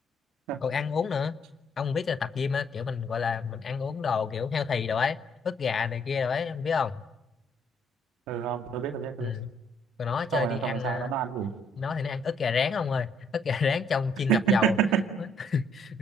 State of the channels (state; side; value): normal; both; correlation 0.67